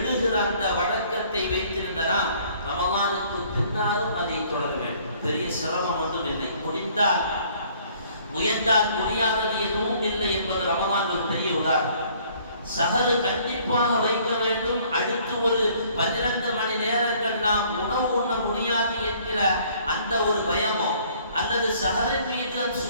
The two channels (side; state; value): both; inverted; correlation -0.59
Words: அந்த வழக்கத்தை வைத்திருந்த நாம் ரமதானுக்கு பின்னாலும் அதை தொடர வேண்டும். பெரிய சிரமம் ஒன்றும் இல்லை. முடிந்தால் முயன்றால் முடியாதது எதுவும் இல்லை என்பது ரமதான் ஒரு பெரிய உதாரணம். சஹரு கண்டிப்பாக வைக்க வேண்டும். அடுத்து ஒரு 12 மணி நேரங்கள் நாம் உணவு உண்ண முடியாது என்கிற அந்த ஒரு பயமோ, அல்லது சஹரின் மீது